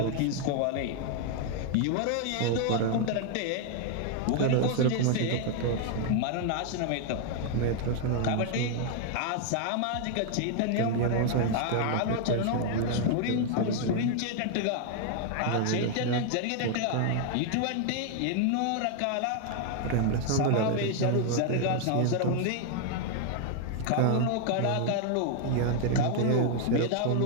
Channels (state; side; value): different; both; correlation 0.00